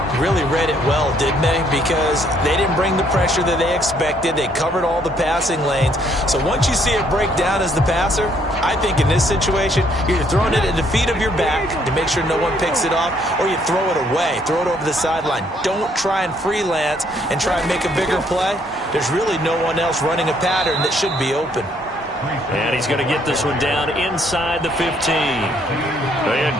Really read it well, didn't they? Because they didn't bring the pressure that they expected. They covered all the passing lanes. So once you see it break down as the passer, I think in this situation, you're throwing it at the feet of your back to make sure no one picks it off, or you throw it away. Throw it over the sideline. Don't try and freelance and try and make a bigger play. There's really no one else running a pattern that should be open. And he's going to get this one down inside the 15. They had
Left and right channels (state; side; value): normal; both; correlation 0.67